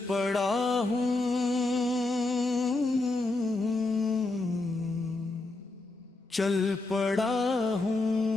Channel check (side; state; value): right; quieter; 3.1 dB